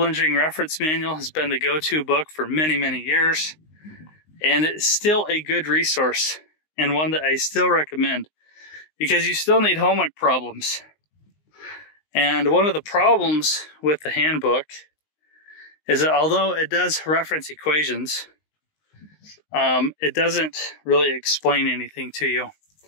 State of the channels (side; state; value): right; late; 19 ms